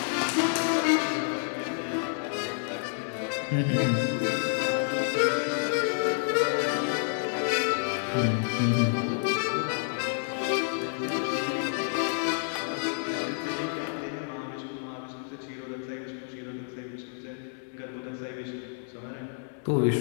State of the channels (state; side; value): silent; right; 58 dB below the other